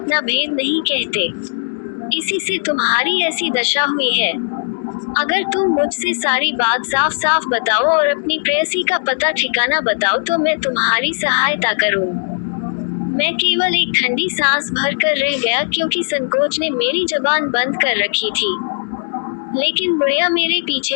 भेद नहीं कहते। इसी से तुम्हारी ऐसी दशा हुई है। अगर तुम मुझसे सारी बात साफ साफ बताओ और अपनी प्रेयसी का पता ठिकाना बताओ तो मैं तुम्हारी सहायता करूं। मैं केवल एक ठंडी सांस भर कर रह गया क्योंकि संकोच ने मेरी जबान बंद कर रखी थी। लेकिन बुढ़िया मेरे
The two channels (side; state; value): right; silent; 68 dB below the other